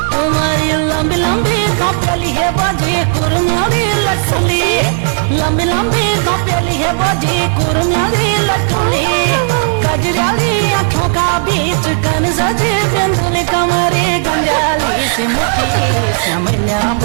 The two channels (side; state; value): left; silent; digital silence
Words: तुम्हारी लंबी लंबी घोपेली हे बोजी कुरमेली लटुली लंबी लंबी घोपेली हे बोजी कुरमेली लटुली कजराली आँखों का बीच कन सजे बिंदुल कमरे गंजाली से मुठी समन्या